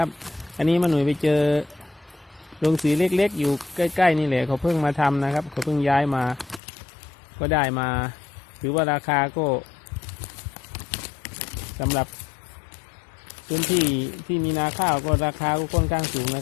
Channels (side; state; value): right; drops out; at 6.6 s